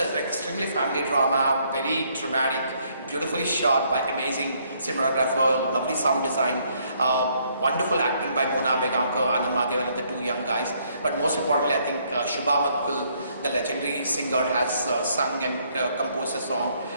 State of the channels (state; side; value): inverted; both; correlation -0.68